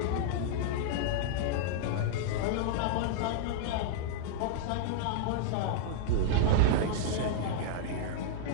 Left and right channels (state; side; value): different; both; correlation -0.01